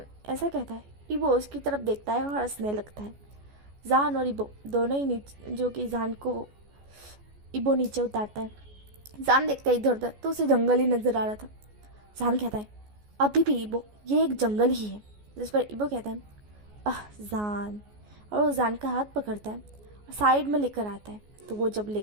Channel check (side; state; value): left; late; 14 ms